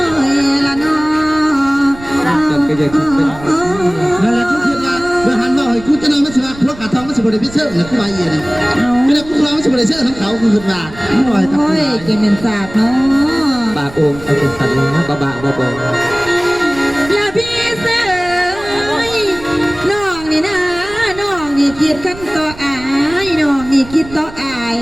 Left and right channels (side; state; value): right; noise; rumble, 16 dB below the sound